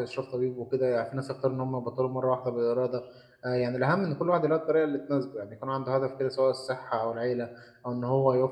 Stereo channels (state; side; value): identical; both; correlation 1.00